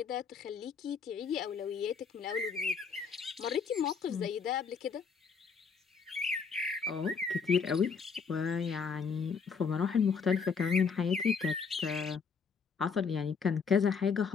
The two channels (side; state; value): right; quieter; 5.7 dB